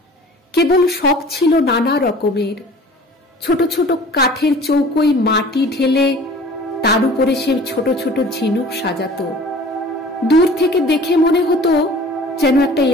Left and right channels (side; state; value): both; normal; correlation 0.46